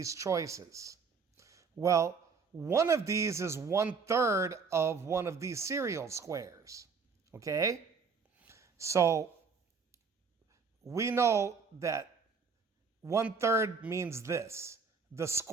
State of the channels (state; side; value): quieter; left; 5.2 dB